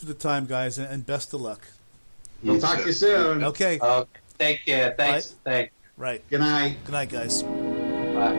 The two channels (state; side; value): inverted; both; correlation -1.00